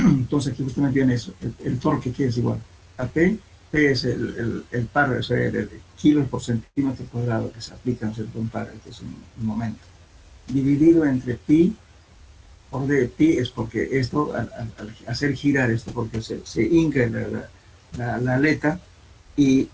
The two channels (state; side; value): identical; both; correlation 1.00